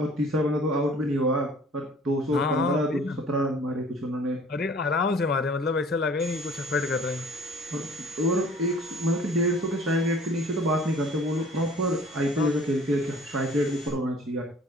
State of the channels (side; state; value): both; normal; correlation 0.50